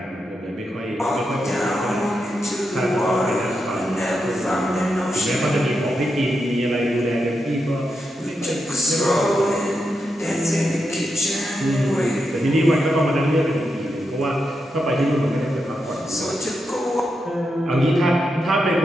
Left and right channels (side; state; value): both; normal; correlation 0.86